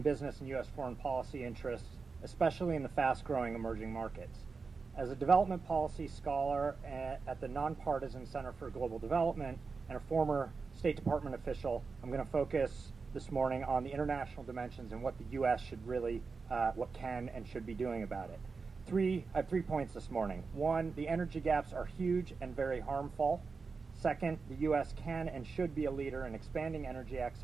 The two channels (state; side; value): quieter; left; 4.7 dB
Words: business and U.S. foreign policy interests, especially in the fast-growing emerging markets. As a development policy scholar at the Nonpartisan Center for Global Development and a former State Department official, I'm going to focus this morning on the international dimensions and what the U.S. should really, what can and should be doing about it. I have 3 points this morning. One, the energy gaps are huge and very harmful. Second, the U.S. can and should be a leader in expanding energy